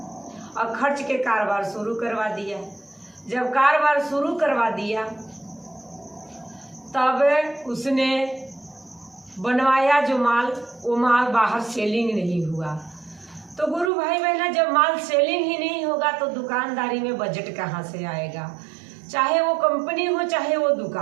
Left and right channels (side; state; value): left; drops out; at 13.9 s